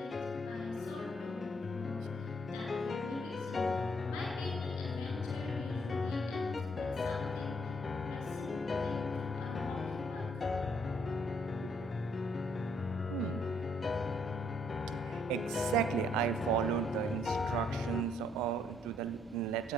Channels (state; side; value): normal; both; correlation 0.69